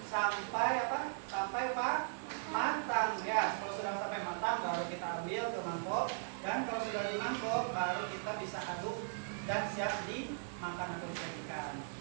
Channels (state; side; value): silent; left; 52 dB below the other